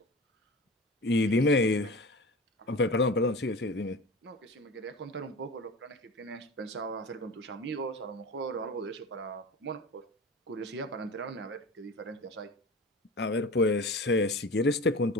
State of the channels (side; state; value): both; normal; correlation 0.33